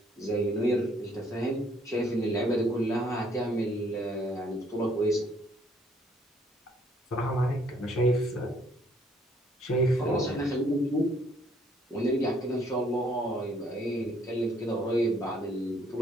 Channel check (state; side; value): normal; both; correlation 0.65